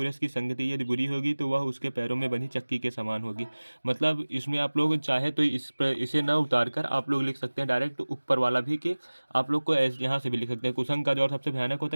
की संगति यदि बुरी होगी तो वह उसके पैरों में बनी चक्की के समान होगी। मतलब इसमें आप लोग चाहे तो इसे ना उतार कर आप लोग लिख सकते हैं डायरेक्ट ऊपर वाला भी, कि आप लोग को यहाँ से भी लिख सकते हैं, कुसंग का ज्वर सबसे भयानक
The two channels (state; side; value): inverted; both; correlation -1.00